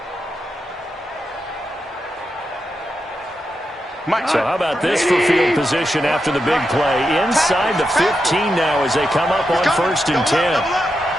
So how about this for field position after the big play? Inside the 15 now as they come up on 1st and 10.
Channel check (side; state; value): both; normal; correlation 0.86